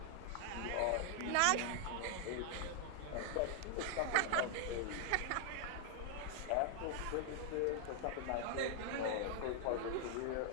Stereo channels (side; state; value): both; different; correlation 0.00